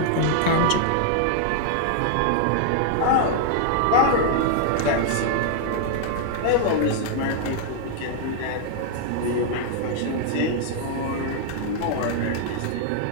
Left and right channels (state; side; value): different; both; correlation -0.01